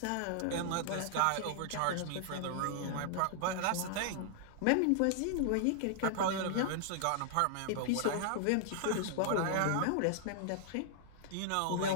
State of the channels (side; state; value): both; different; correlation -0.01